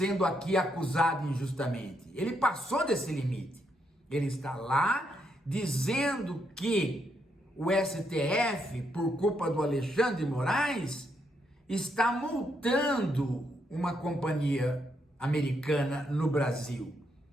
aqui acusado injustamente. Ele passou desse limite. Ele está lá dizendo que o STF, por culpa do Alexandre de Moraes, está multando uma companhia americana no Brasil.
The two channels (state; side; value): normal; both; correlation 0.78